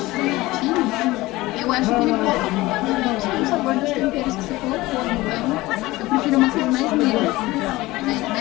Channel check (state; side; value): quieter; right; 19.3 dB